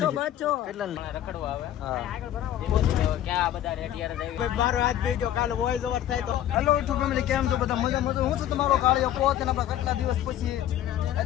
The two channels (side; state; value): right; quieter; 11.8 dB